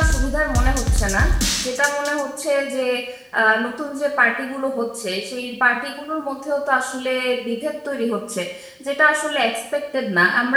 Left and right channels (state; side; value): identical; both; correlation 1.00